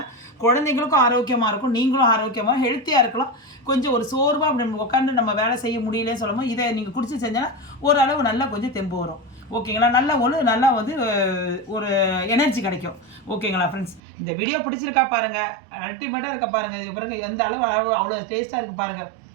குழந்தைங்களுக்கும் ஆரோக்கியமாக இருக்கும், நீங்களும் ஆரோக்கியமாக ஹெல்த்தியாக இருக்கலாம். கொஞ்சம் ஒரு சோர்வாக அப்படி உட்காந்து நம்ம வேலை செய்ய முடியலன்னு சொல்லும்போது இதை நீங்கள் குடிச்சு செஞ்சோன்னா ஓரளவு நல்லா கொஞ்சம் தெம்பு வரும். ஓகேங்களா, நல்லா வந்து ஒரு எனர்ஜி கிடைக்கும். ஓகேங்களா ஃப்ரெண்ட்ஸ், இந்த வீடியோ பிடிச்சிருக்கா பாருங்கள், அல்டிமேட்டாக இருக்க பாருங்கள். இது பாருங்கள் எந்த அளவு அவ்வளோ டேஸ்ட்டாக இருக்குது பாருங்கள்,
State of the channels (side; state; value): left; drops out; at 14.0 s